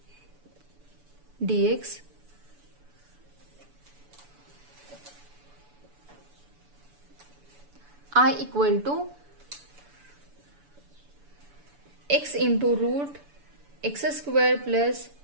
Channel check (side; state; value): left; late; 6.9 ms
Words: dx I equal to x into root x square plus